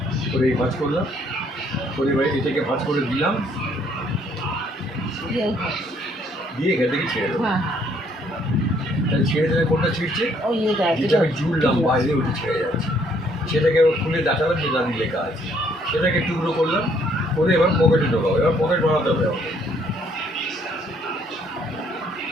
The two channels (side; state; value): both; normal; correlation 0.66